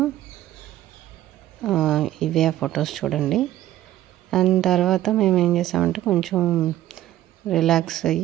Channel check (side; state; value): left; quieter; 13.8 dB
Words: ఇవే ఆ ఫొటోస్ చూడండి. అండ్ తర్వాత మేము ఏం చేసామంటే కొంచెం రిలాక్స్